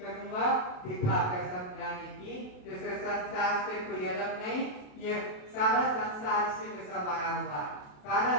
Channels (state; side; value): late; right; 28 ms